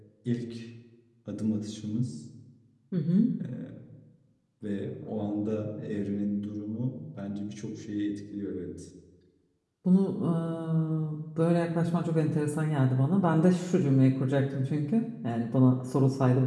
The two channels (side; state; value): both; identical; correlation 1.00